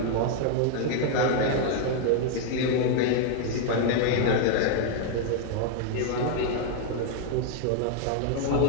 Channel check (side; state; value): both; different; correlation 0.00